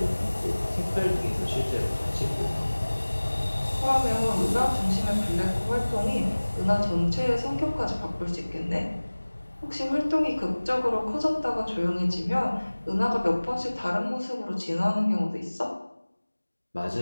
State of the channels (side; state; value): both; inverted; correlation -1.00